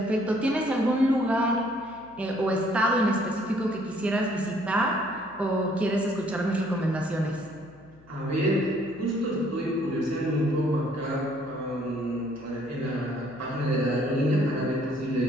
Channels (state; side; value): noise; left; hum, 25 dB below the sound